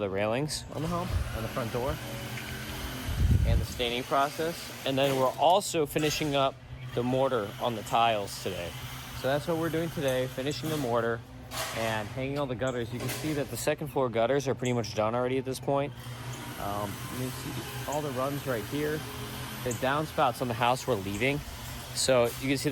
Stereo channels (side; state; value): both; identical; correlation 1.00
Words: railings on the home, on the front door, and the staining process. And then we're also finishing up the mortar on the tiles today. So that's what we're doing today, finishing the mortar and hanging all the gutters. You can see that the second floor gutters are pretty much done already at this point. You can see all the runs right here. The downspouts on the house we're leaving. So you can see